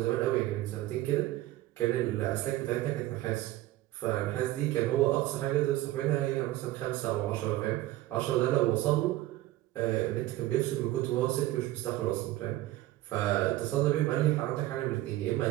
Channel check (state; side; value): quieter; left; 16.1 dB